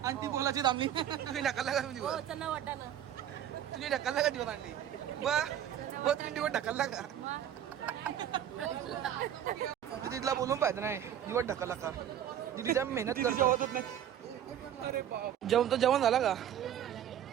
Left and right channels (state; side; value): quieter; left; 10.3 dB